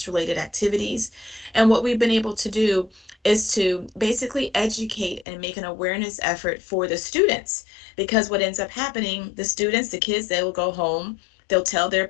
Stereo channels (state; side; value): drops out; right; at 5.2 s